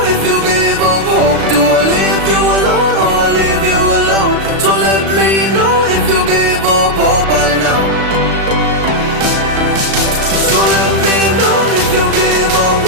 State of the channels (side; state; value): left; late; 36 ms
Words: if you give up hope. Do I leave you alone or I leave you alone? So let me know if you give up hope by now. So let me know if you give up